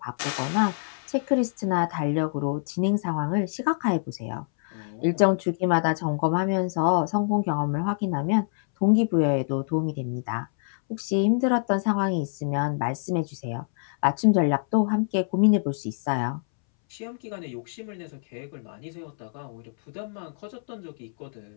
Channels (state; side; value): silent; right; 61 dB below the other